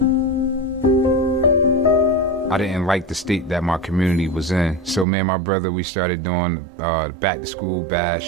didn't like the state that my community was in. So me and my brother, we started doing back to school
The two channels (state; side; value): drops out; left; at 5.1 s